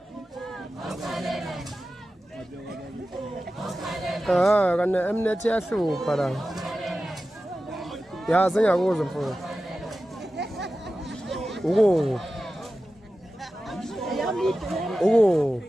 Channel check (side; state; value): both; normal; correlation 0.94